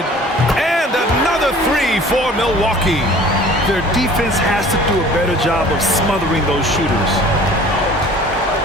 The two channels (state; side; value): normal; both; correlation 0.48